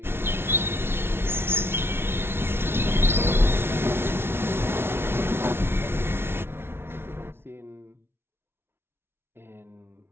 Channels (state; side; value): late; left; 0.12 ms